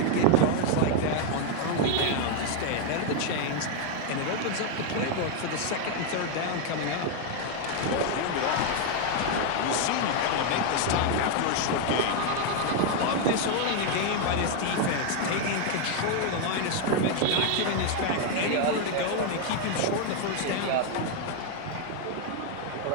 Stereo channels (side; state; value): both; different; correlation 0.01